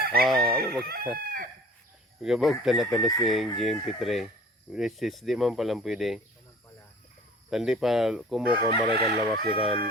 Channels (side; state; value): both; normal; correlation 0.46